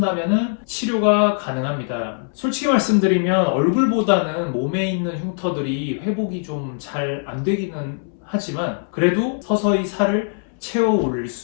치료가 가능합니다. 솔직히 말씀드리면 얼굴보다는 몸에 있는 흉터들이 회복이 좀 잘 안 되기는 하지만 그래도 서서히 살을 채워 올릴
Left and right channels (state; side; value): silent; right; 65 dB below the other